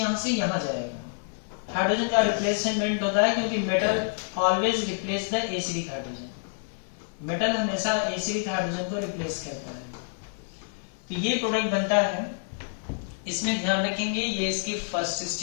से यहाँ जाएगा। हाइड्रोजन का रिप्लेसमेंट होता है क्योंकि metal always replace the acidic hydrogen, metal हमेशा एसिडिक हाइड्रोजन को रिप्लेस करता है। तो ये प्रोडक्ट बनता है, इसमें ध्यान रखेंगे ये इसकी फर्स्ट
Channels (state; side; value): silent; right; 60 dB below the other